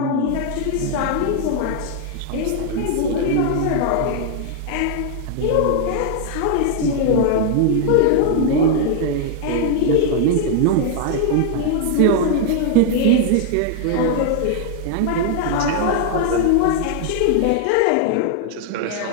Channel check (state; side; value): different; both; correlation 0.00